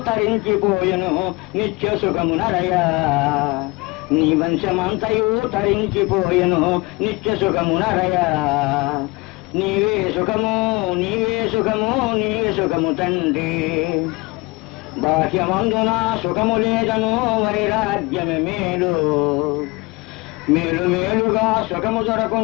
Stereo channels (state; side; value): quieter; right; 24.5 dB